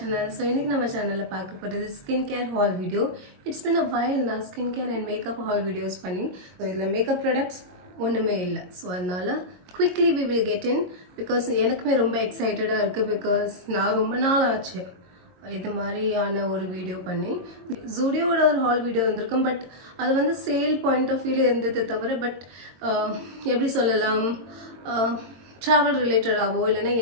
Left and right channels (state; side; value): late; left; 22 ms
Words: So in this channel this skincare haul video. It's been a while now skincare and makeup haul videos funny. So the makeup products ஒண்ணுமே இல்ல. So அதனால quickly we will get in because எனக்குமே ரொம்ப எக்ஸைட்டடா இருக்கு because நான் ரொம்ப நாள் ஆச்சு இது மாதிரியான ஒரு வீடியோ பண்ணி ஜூடியோட ஒரு ஹால் வீடியோ வந்திருக்கும் பட் அது வந்து சேல் பாயிண்ட் ஆஃப் வியூல இருந்தது தவிர பட் எப்படி சொல்லலாம் travel related ஆவோ இல்லனா